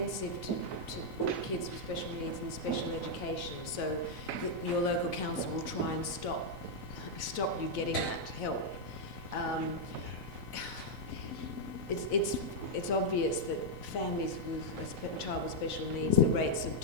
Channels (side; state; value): left; late; 4.0 ms